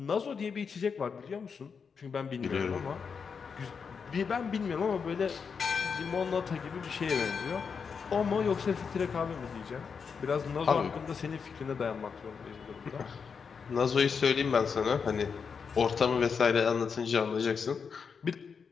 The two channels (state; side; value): quieter; right; 6.0 dB